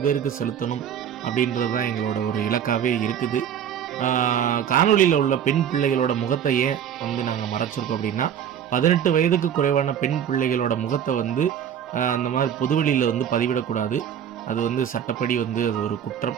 பேருக்கு செலுத்தணும் அப்படின்றது தான் எங்களோட ஒரு இலக்காகவே இருக்குது. காணொலியில் உள்ள பெண் பிள்ளைகளோட முகத்தை ஏன் வந்து நாங்கள் மறைச்சிருக்கோம் அப்படின்னா 18 வயதுக்கு குறைவான பெண் பிள்ளைகளோட முகத்தை வந்து அந்த மாதிரி பொதுவெளியில் வந்து பதிவிடக்கூடாது. அது வந்து சட்டப்படி வந்து அது ஒரு குற்றம்.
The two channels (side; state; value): left; quieter; 9.1 dB